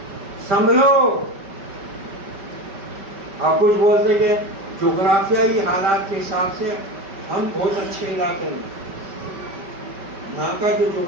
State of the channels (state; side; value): late; left; 5.2 ms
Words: سنبھلو. آپ کچھ بولتے کہ جغرافیائی حالات کے حساب سے ہم بہت اچھے علاقے میں، یہاں کا جو